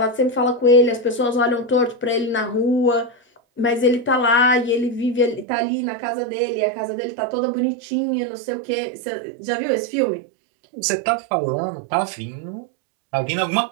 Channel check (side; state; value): left; drops out; at 5.5 s